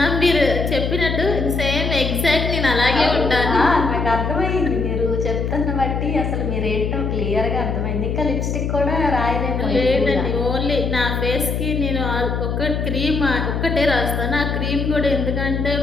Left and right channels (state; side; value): noise; left; hum, 1 dB below the sound